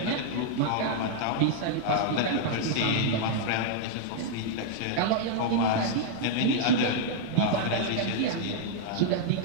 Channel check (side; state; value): both; different; correlation -0.01